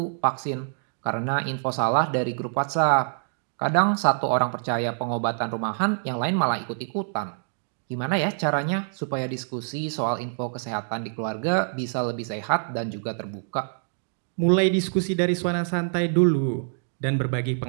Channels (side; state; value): left; silent; digital silence